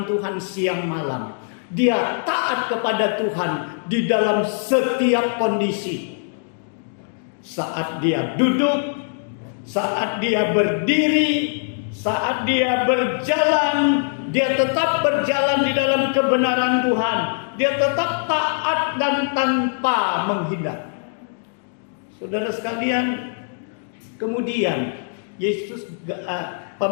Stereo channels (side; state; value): right; silent; digital silence